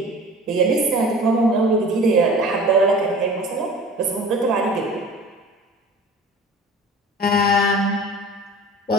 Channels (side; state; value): both; normal; correlation 0.41